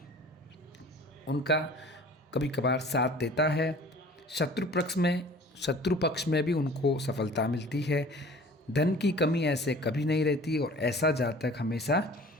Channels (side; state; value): both; normal; correlation 0.46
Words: उनका कभी कभार साथ देता है। शत्रु पक्ष में भी उनको सफलता मिलती है। धन की कमी ऐसे कभी नहीं रहती और ऐसा जातक हमेशा